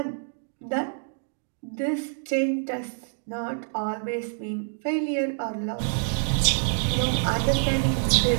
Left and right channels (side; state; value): left; silent; digital silence